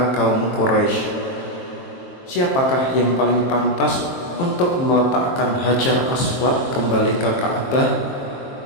kaum Quraisy. Siapakah yang paling pantas untuk meletakkan Hajar Aswad kembali ke Ka'bah?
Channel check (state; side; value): late; right; 23 ms